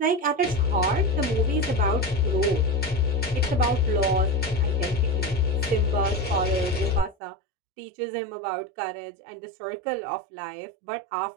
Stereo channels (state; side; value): drops out; left; at 7.2 s